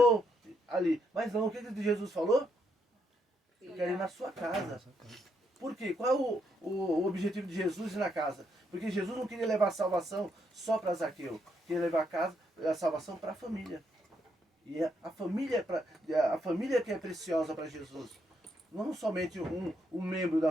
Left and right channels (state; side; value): normal; both; correlation 0.77